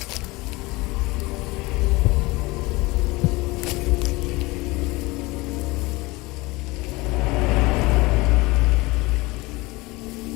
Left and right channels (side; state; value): right; quieter; 22.6 dB